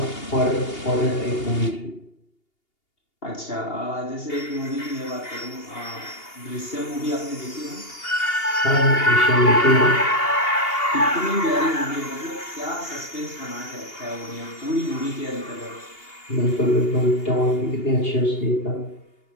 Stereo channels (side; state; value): right; late; 2.8 ms